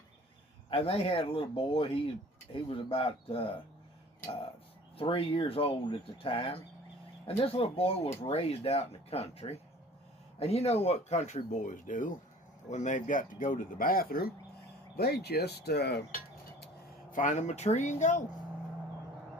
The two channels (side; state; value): both; normal; correlation 0.48